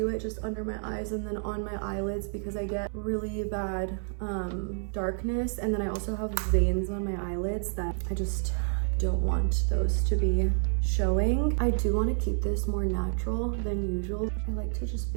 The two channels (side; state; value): left; silent; 58 dB below the other